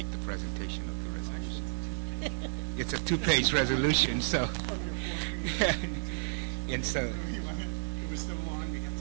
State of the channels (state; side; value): silent; left; 56 dB below the other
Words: the presentation of the resolution. It's a 2-page resolution, so. And so. It was so long, we had